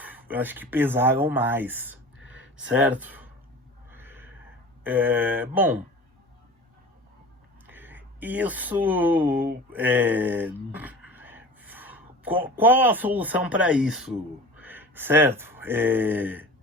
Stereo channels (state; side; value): normal; both; correlation 0.38